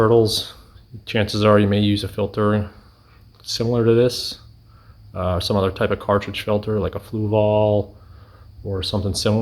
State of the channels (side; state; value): both; identical; correlation 1.00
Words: chances are you may use a filter similar to this, some other type of cartridge filter like a Fluval or something